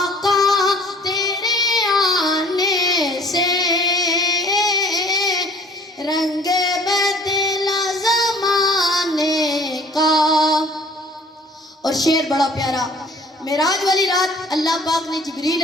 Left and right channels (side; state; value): both; normal; correlation 0.52